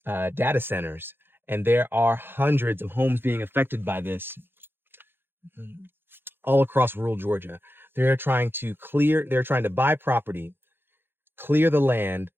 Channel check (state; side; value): late; left; 0.10 ms